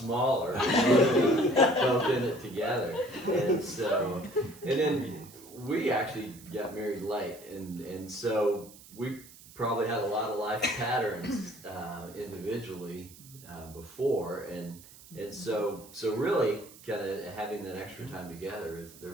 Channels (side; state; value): right; noise; hiss, 20 dB below the sound